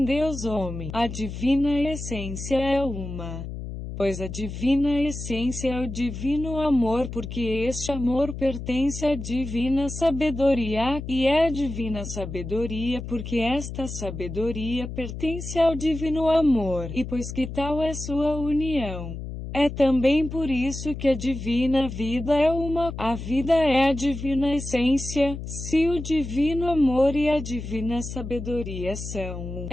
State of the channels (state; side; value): noise; left; hum, 8 dB below the sound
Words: Deus homem. A divina essência é uma. Pois a divina essência é o divino amor, porque este amor pertence à divina sabedoria, e é a divina sabedoria porque esta sabedoria pertence ao divino amor, e pois que tal é sua união. É também por isso que a divina vida é uma, a vida é a divina essência. Se o divino amor e a divina sabedoria são um,